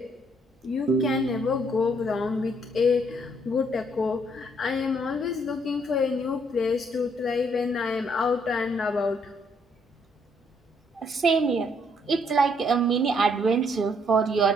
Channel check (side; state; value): both; normal; correlation 0.69